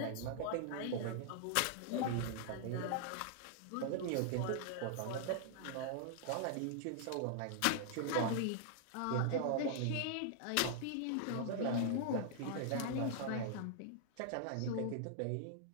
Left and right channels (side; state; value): both; different; correlation -0.01